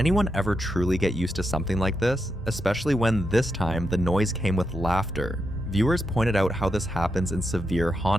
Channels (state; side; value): normal; both; correlation 0.84